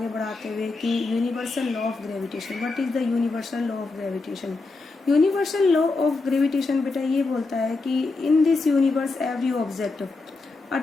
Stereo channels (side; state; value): right; quieter; 3.6 dB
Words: बढ़ाते हुए कि universal law of gravitation. What is the universal law of gravitation? Universal law of gravitation बेटा ये बोलता है कि in this universe every object